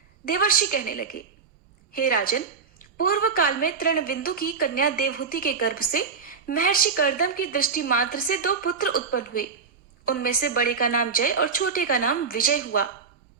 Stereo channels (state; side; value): quieter; left; 5.4 dB